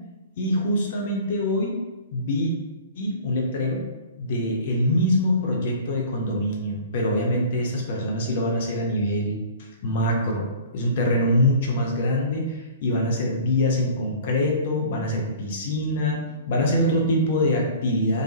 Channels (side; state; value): both; inverted; correlation -0.43